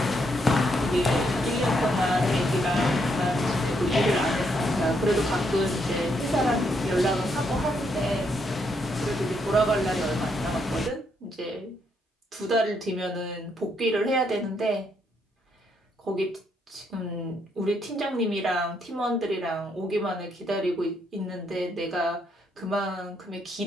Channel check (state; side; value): normal; both; correlation 0.75